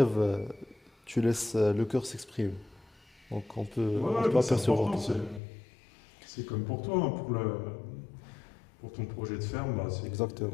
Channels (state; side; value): drops out; right; at 5.4 s